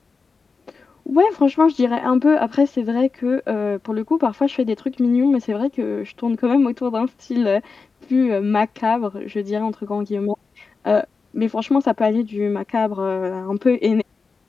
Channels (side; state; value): right; quieter; 4.6 dB